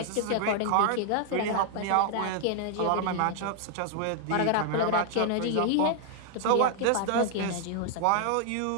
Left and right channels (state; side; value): different; both; correlation 0.00